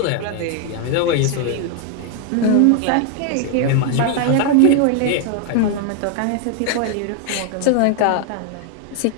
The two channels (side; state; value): both; different; correlation 0.00